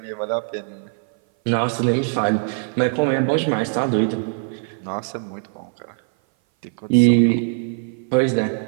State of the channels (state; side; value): silent; left; 59 dB below the other